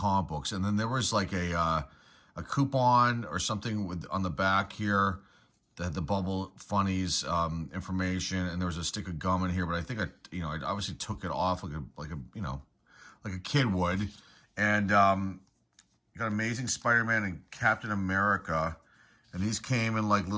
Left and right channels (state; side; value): identical; both; correlation 1.00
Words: books. And then there was like a coupon or something on the back here that had the Bubble Funnies information, and there was a stick of gum in here. But I think I obviously took it off like a kid would. And got Amazing Spider-Man and Captain America. And these came in like